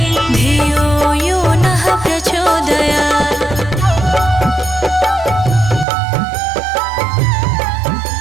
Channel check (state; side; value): drops out; left; at 5.9 s